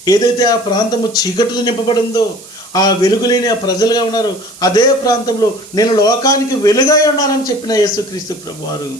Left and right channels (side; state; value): right; noise; hiss, 19 dB below the sound